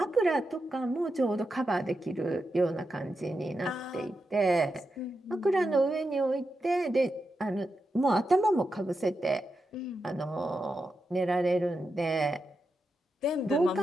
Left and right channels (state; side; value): normal; both; correlation 0.87